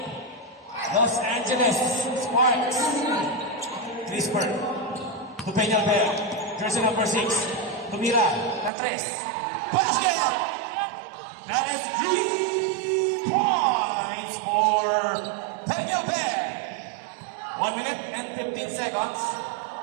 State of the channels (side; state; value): left; drops out; at 8.7 s